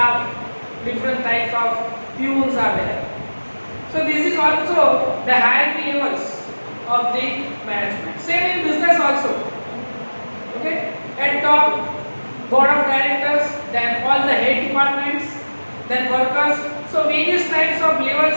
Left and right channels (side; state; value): both; inverted; correlation -1.00